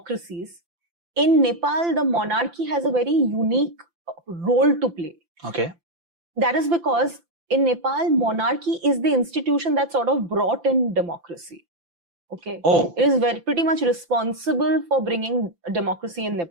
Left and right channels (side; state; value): left; late; 5.9 ms